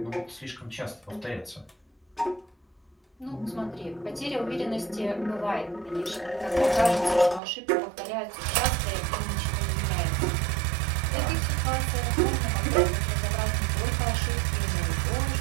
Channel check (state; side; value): drops out; left; at 7.4 s